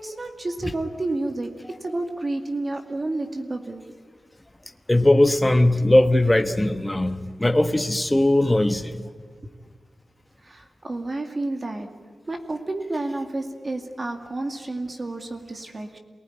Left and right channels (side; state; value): both; normal; correlation 0.98